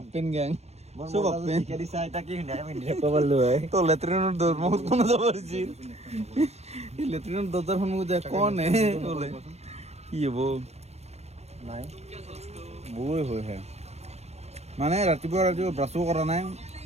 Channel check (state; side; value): late; left; 0.31 ms